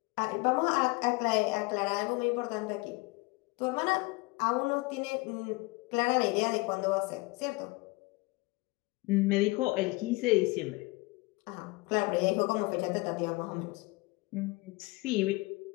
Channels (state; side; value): quieter; right; 24.2 dB